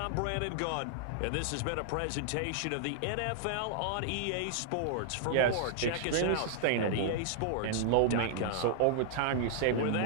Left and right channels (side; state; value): both; different; correlation -0.01